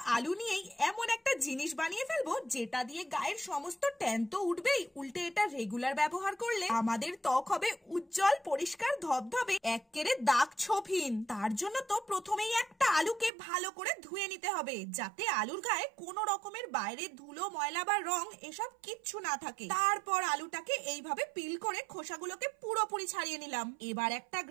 আলু নিয়েই এমন একটা জিনিস বানিয়ে ফেলবো যেটা দিয়ে গায়ের সমস্ত ট্যান তো উঠবেই, উল্টে এটা রেগুলার ব্যবহার করলে আমাদের ত্বক হবে উজ্জ্বল পরিষ্কার ধবধবে, একেবারে দাগ ছোপহীন। তার জন্য তো প্রথমেই একটা আলুকে ভালো করে ধুয়ে নিতে হবে, যাতে আলুর গায়ে কোনো রকমের বাইরে ধুলো ময়লা বা রং এসব কিচ্ছু না থাকে। তারপর আলুটাকে এইভাবে পিল করে খোসাগুলোকে পুরোপুরি ছাড়িয়ে নিলাম। এবার একটা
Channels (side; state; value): left; drops out; at 13.3 s